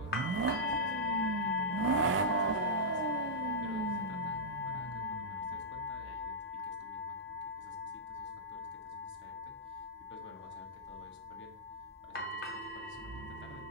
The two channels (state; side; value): normal; both; correlation -0.10